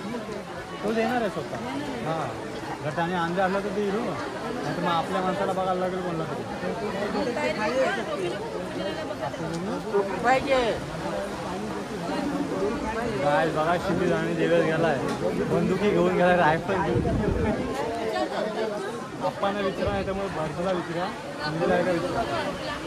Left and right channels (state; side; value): identical; both; correlation 1.00